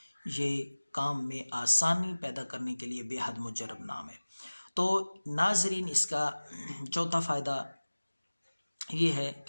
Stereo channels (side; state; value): both; inverted; correlation -1.00